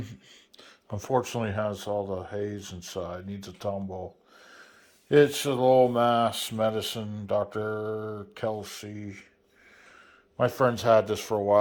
unfortunately, has all the haze inside. Needs a tumble. It's a Lowell, Mass. Medicine, Dr. Kelsey. My friends had this for a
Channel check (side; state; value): both; identical; correlation 1.00